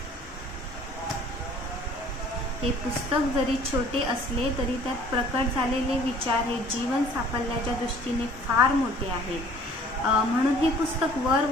हे पुस्तक जरी छोटे असले तरी त्यात प्रकट झालेले विचार हे जीवन साफल्याच्या दृष्टीने फार मोठे आहेत। म्हणून हे पुस्तक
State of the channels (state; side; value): normal; both; correlation 0.52